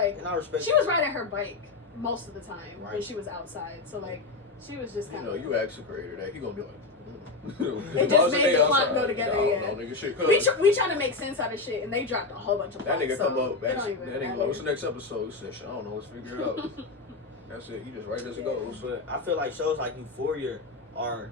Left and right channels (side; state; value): right; quieter; 3.7 dB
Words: and I respect she was riding her bike most of the time right. when she was outside. So like, she was just kind of. You ask the creator that he gonna be like. It just made the plot go together. Yeah. Nigga, shit we trying to make sense out of shit, and they dropped a whole bunch of plots. That nigga so come up. That nigga, what's the matter. next episode? He said, I don't know. Let's figure it out. That's it. He just right as it goes. But I feel like shows like Euphoria are,